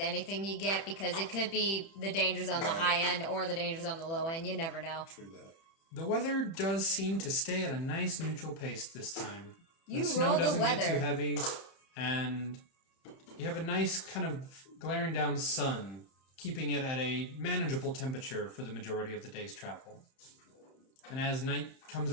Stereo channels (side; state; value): right; late; 31 ms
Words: you get because it could be the dangers on the high end or the dangers on the low end. You never know. True that. The weather does seem to stay at a nice neutral pace this time. You the snow roll the doesn't get weather. too heavy, and you have a nice kind of glaring down sun, keeping it at a manageable temperature for the majority of the day's travel. And as night comes